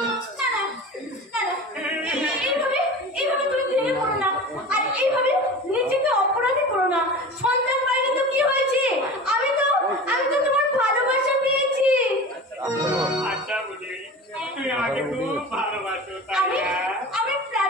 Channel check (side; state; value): both; normal; correlation 0.34